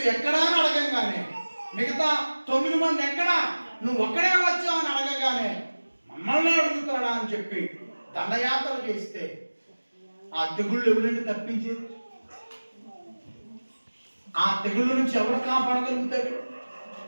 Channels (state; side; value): inverted; both; correlation -1.00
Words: ఎక్కడా అని అడగంగానే, మిగతా 9 మంది ఎక్కడా, నువ్వు ఒక్కడే వచ్చావు అని అడగగానే మమ్మల్ని అడుగుతాడా అని చెప్పి దండయాత్ర చేస్తే ఆ తెగుళ్ళు ఎవరండి తప్పించేది? ఆ తెగుళ్ళ నుంచి ఎవరు కాపాడగలుగుతాడు?